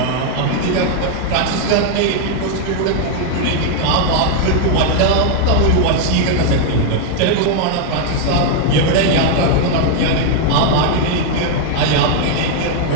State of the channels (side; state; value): both; different; correlation 0.00